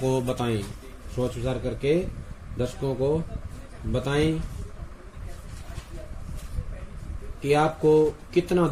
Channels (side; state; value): both; identical; correlation 1.00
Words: बताएं। सोच विचार करके दर्शकों को बताएं कि आपको कितना